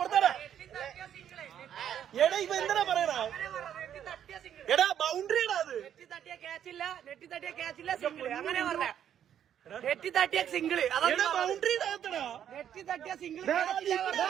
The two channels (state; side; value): quieter; left; 9.7 dB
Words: എടാ ഇവ എന്താ പറയണ? എടാ ബൗണ്ടറിയാടാ അത്. നെറ്റി തട്ടിയ ക്യാച്ചില്ല സിംഗിള് അങ്ങനെ പറഞ്ഞ. നെറ്റി തട്ടിയ സിംഗിള് അതൊക്കെ ബൗണ്ടറി നെറ്റി തട്ടിയ സിംഗിള്